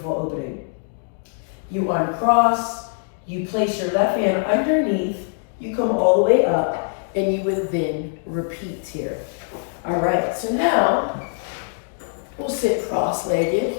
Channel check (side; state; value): right; silent; digital silence